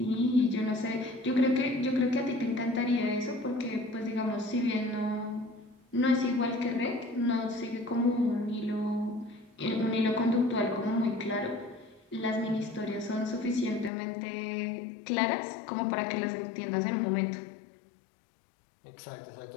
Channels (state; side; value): drops out; right; at 13.9 s